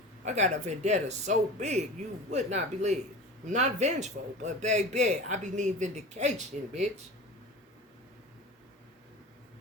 I got a vendetta so big you would not believe. I'm not vengeful, but baby, I be needing vindication, bitch.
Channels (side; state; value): both; normal; correlation 0.34